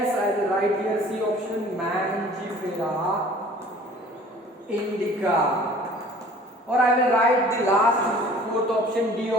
I will write here C option, Mangifera indica. Or I will write the last 4th option, D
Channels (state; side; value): normal; both; correlation 0.49